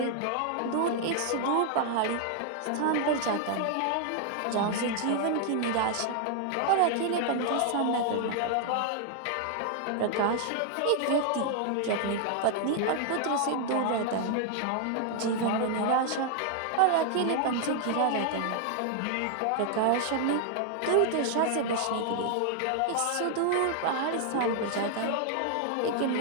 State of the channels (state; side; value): different; both; correlation 0.00